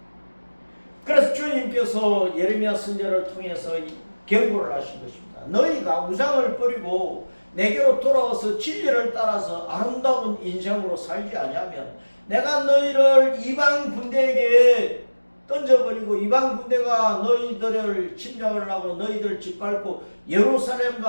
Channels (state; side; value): inverted; both; correlation -1.00